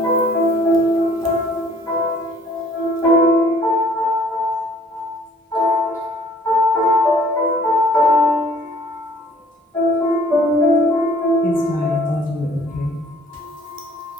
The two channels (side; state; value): both; normal; correlation 0.56